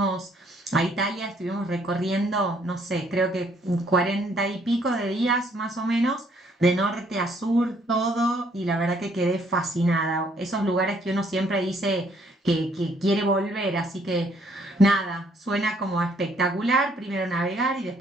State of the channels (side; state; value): both; normal; correlation 0.66